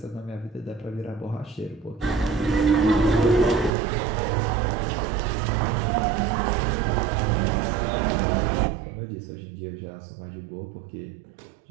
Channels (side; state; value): left; drops out; at 3.7 s